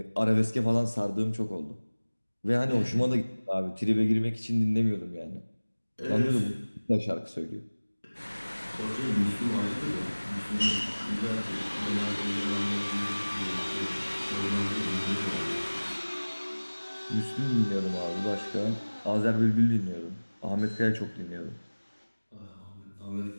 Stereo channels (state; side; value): inverted; both; correlation -1.00